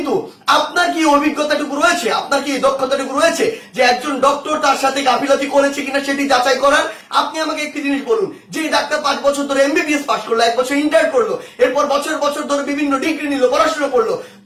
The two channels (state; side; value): identical; both; correlation 1.00